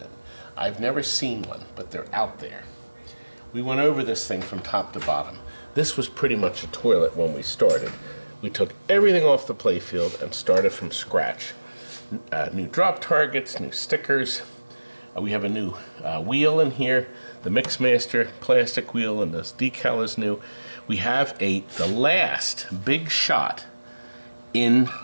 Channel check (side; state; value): both; inverted; correlation -1.00